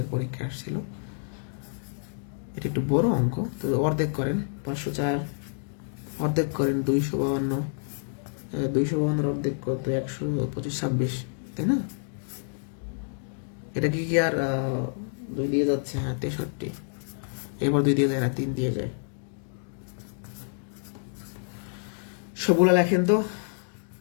পরীক্ষা আসছিল। এটা একটু বড় অঙ্ক, তো অর্ধেক করেন 504, অর্ধেক করেন 252, 252-এর অর্ধেক কত, 125, 26, তাই না? এটা কি আর 2 দিয়ে যাচ্ছে, হ্যাঁ 63, এবার 2 দিয়ে যায় না, 3 দিয়ে যায়। সবগুলো লেখেন তো।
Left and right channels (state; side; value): silent; right; digital silence